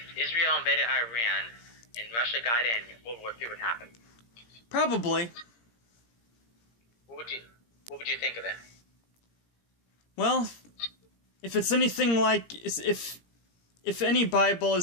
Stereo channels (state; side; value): late; right; 17 ms